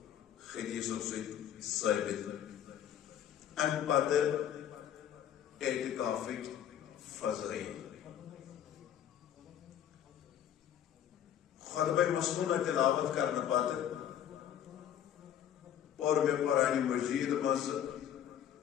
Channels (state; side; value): quieter; right; 10.1 dB